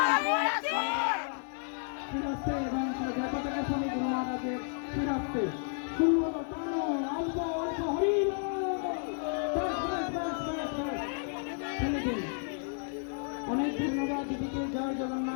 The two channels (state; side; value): silent; right; 57 dB below the other